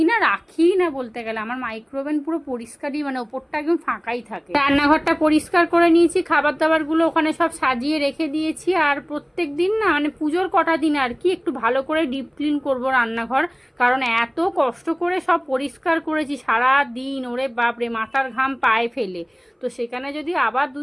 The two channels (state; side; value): identical; both; correlation 1.00